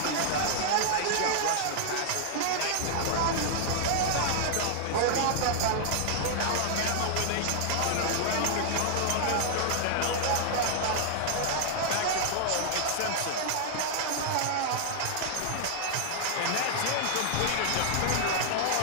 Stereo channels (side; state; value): both; different; correlation -0.01